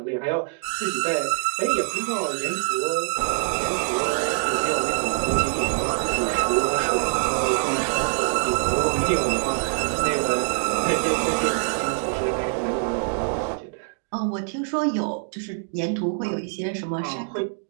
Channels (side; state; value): left; silent; 62 dB below the other